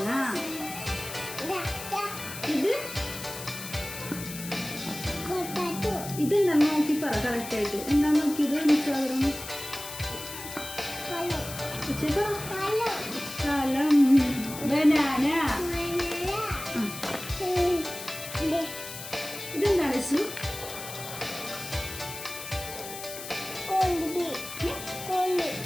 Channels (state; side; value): noise; left; hiss, 10 dB below the sound